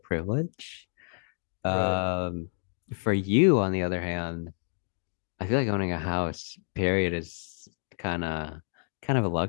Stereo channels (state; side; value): silent; right; digital silence